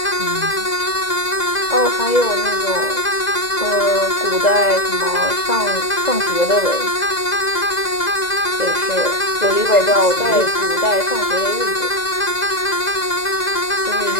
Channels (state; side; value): late; right; 2.0 ms